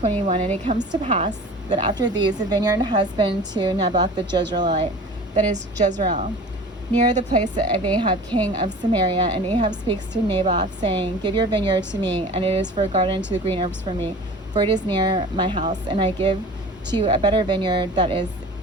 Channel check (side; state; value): both; normal; correlation 0.40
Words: And it comes to pass that after these, a vineyard has been to Naboth the Jezreelite, that is Jezreel, near the place of Ahab king of Samaria. And Ahab speaks to Naboth, saying, Give your vineyard to me, and it is for a garden to the green herbs for me, for it is near my house, and I give to you a better vineyard that is